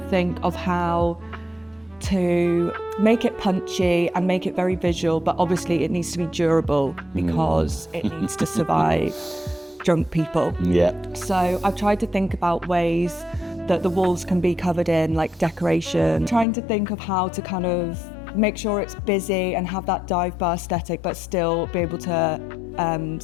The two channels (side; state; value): right; drops out; at 16.4 s